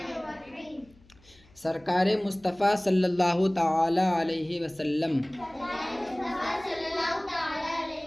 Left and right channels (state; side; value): noise; left; hum, 28 dB below the sound